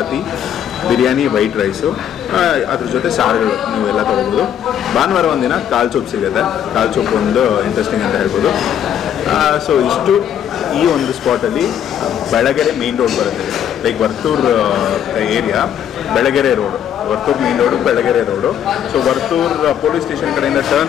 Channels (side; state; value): right; quieter; 9.6 dB